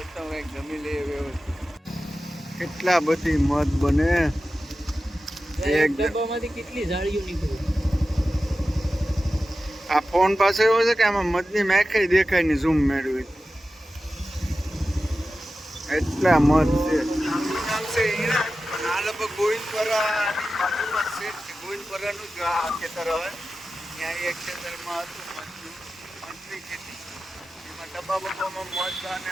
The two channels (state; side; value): normal; both; correlation 0.94